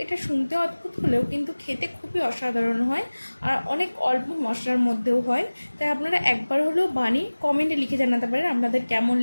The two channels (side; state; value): both; inverted; correlation -1.00